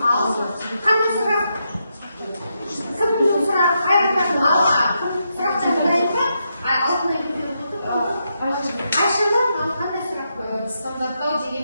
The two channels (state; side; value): inverted; both; correlation -0.82